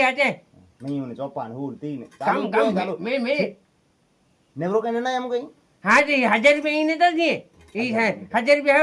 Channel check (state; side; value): identical; both; correlation 1.00